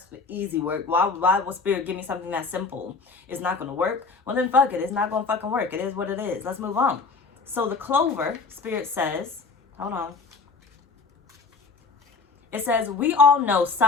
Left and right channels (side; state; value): right; quieter; 4.3 dB